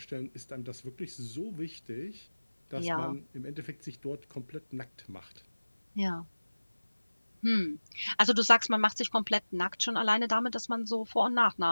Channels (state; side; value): inverted; both; correlation -1.00